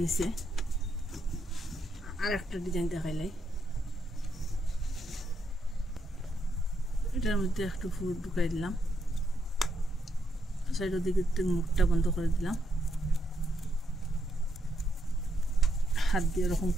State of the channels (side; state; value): both; normal; correlation 0.78